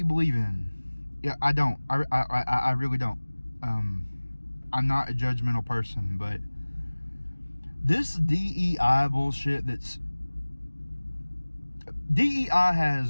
believe in. Yeah, I don't. I really don't. I'm not a judgmental person, but this DEI bullshit DEI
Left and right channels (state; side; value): inverted; both; correlation -1.00